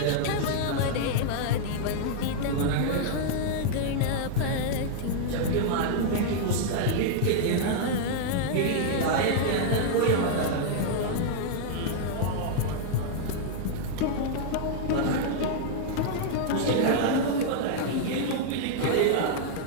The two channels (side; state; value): both; different; correlation -0.01